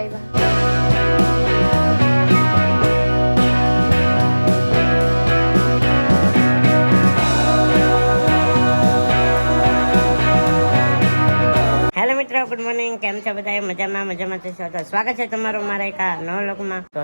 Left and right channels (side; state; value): both; inverted; correlation -1.00